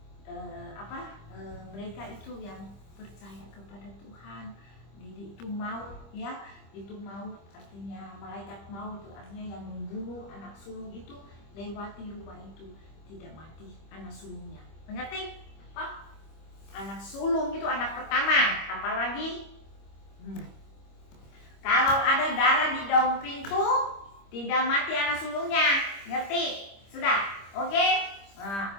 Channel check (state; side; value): late; right; 25 ms